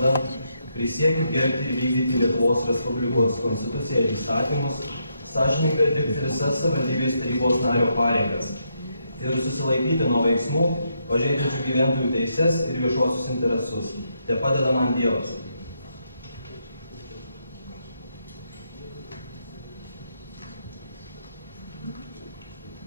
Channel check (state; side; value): inverted; both; correlation -0.79